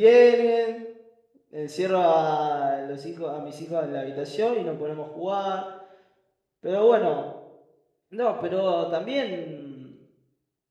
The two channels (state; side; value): identical; both; correlation 1.00